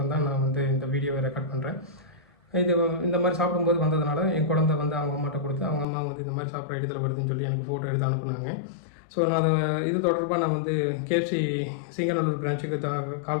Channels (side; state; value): right; drops out; at 5.9 s